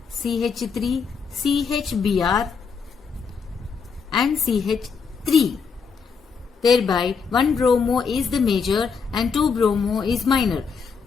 CH3, CHBr and CH3. Thereby 1 bromo is the major and 2 bromo is minor.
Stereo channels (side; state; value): right; quieter; 5.6 dB